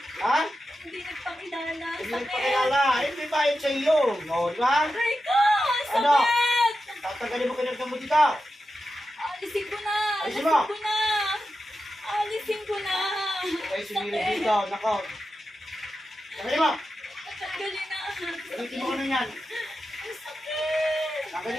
Ha? Hindi nagpakilala. Hindi Sakit. nagpakilala. Hindi bayad sa iyo. Di ba? Aray ko! Ano? Sakit! Tatanggalin mo kinagdan mo dito. Alisin ko na! Alisin mo. ko na! Alisin ko na! Okay, sumilip dito. Nako. Tanggalin mo. Tatanggalin na! Gamitin mo ano yan. Ang sakit!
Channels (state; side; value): normal; both; correlation 0.90